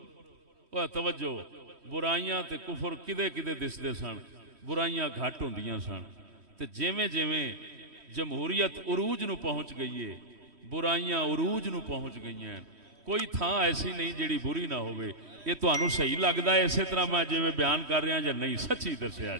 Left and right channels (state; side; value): late; left; 3.1 ms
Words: توجہ، برائیاں تے کفر کدے کدے دسدے سن، برائیاں گھٹ ہوندیاں سن، تے جیویں جیویں جمہوریت عروج نو پہنچ گئی ہے، برائیاں عروج نو پہنچ گئی ہیں، کوئی تھان ایسی نہیں جیڑی بری نہ ہوئے۔ یہ تانوں صحیح لگدا ہے اسی طرح میں جویں بیان کر رہا یا نہیں؟ سچی دسیا